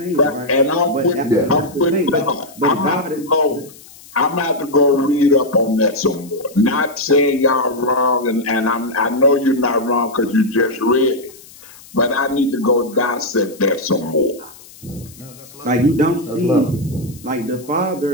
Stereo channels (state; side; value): noise; left; hiss, 21 dB below the sound